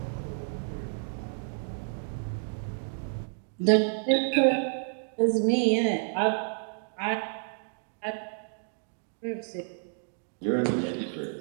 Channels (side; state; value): left; silent; digital silence